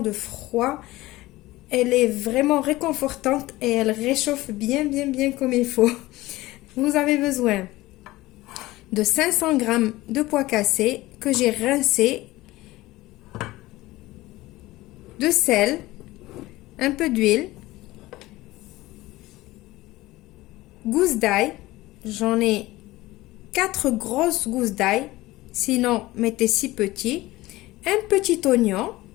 froid. Elle est vraiment réconfortante et elle réchauffe bien comme il faut. Vous avez besoin de 500 g de pois cassés que j'ai rincés, de sel, un peu d'huile, gousses d'ail, j'en ai 4 grosses gousses d'ail, sinon mettez 6 petits, un petit oignon,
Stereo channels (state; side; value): quieter; right; 18.5 dB